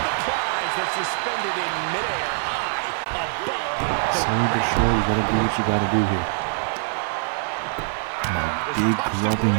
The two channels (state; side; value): silent; left; 58 dB below the other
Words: Slowly but surely, you got to do what you got to do here. And a big clubbing